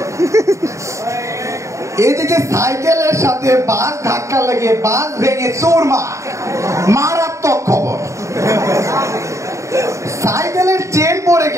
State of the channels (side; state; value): left; late; 0.15 ms